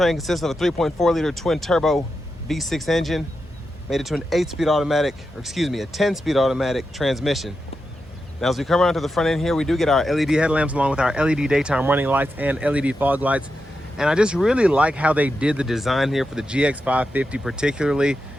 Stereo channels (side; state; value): both; normal; correlation 0.88